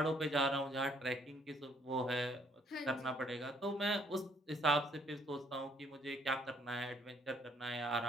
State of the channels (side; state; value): both; normal; correlation 0.65